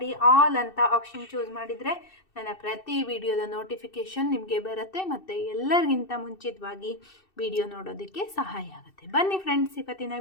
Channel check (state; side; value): late; right; 2.7 ms